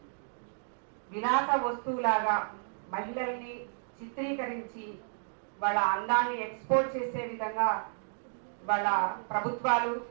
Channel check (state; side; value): silent; left; digital silence